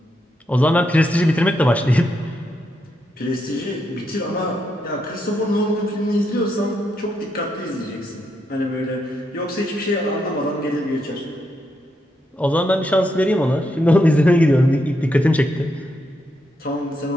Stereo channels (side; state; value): both; normal; correlation 0.81